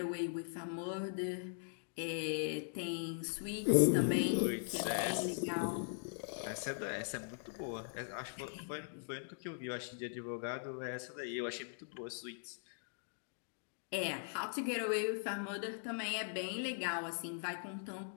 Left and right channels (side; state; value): right; silent; digital silence